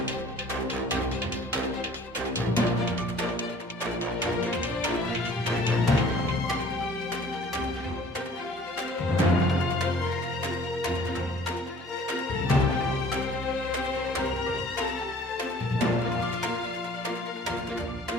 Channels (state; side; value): normal; both; correlation 0.51